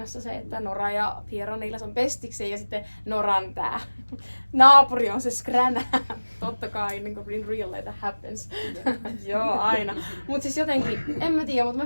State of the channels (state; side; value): inverted; both; correlation -1.00